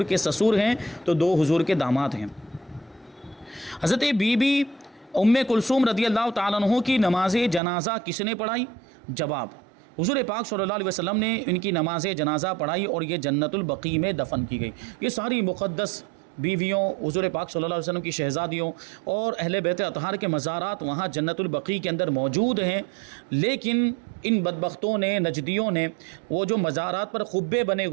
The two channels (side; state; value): left; drops out; at 7.6 s